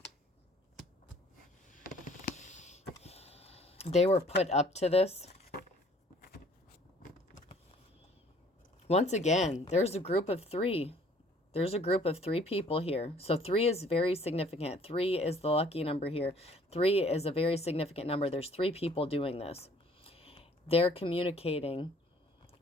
They were put up to this. Once again, there's a group of three. There's a group of 3 people here. So 3 is very significant. 3 is the lucky number here. 3 is a very significant number. There's 3 people doing this. They're communicating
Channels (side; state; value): both; normal; correlation 0.57